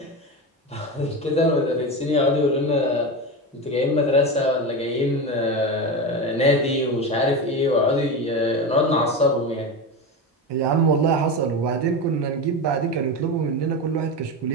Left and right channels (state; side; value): normal; both; correlation 0.20